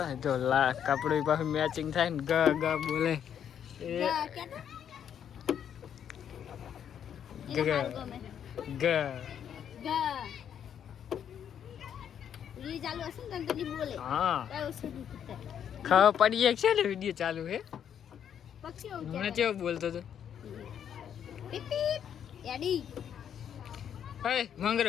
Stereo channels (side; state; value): right; quieter; 8.9 dB